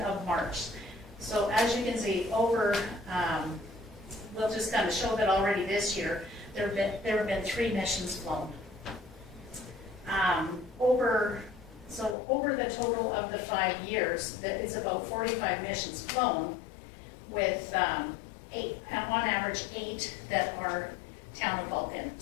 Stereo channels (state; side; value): drops out; right; at 12.2 s